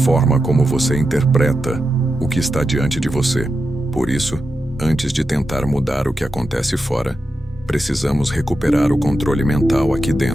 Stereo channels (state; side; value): normal; both; correlation 0.89